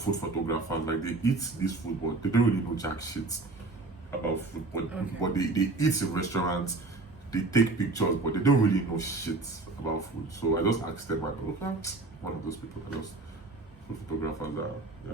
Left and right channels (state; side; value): quieter; left; 3.3 dB